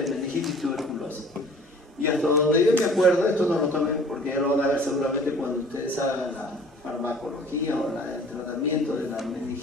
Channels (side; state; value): both; normal; correlation 0.49